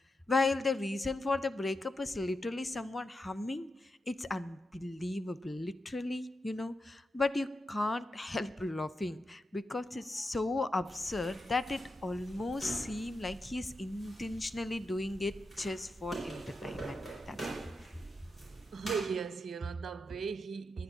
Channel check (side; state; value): both; normal; correlation 0.88